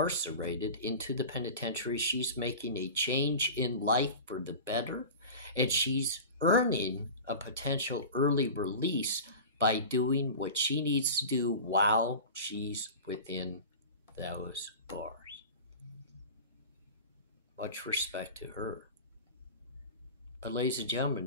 into the penitentiary, she's making a change in life for the better, and she's earning a potential early release by doing what she needs to do while she's within those bars. Much respect to her. But ladies and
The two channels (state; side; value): inverted; both; correlation -0.34